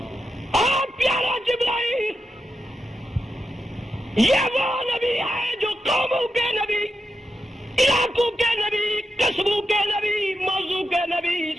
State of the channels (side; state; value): both; normal; correlation 0.88